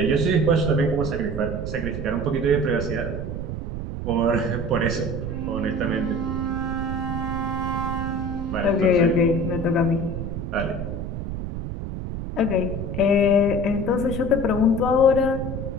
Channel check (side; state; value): right; noise; rumble, 5 dB below the sound